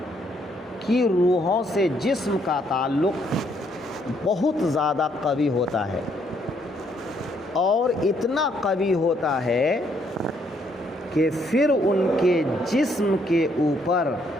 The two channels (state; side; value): normal; both; correlation 0.70